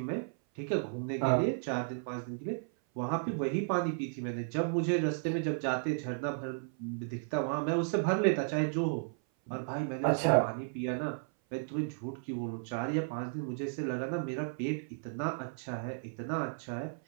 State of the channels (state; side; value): silent; left; 55 dB below the other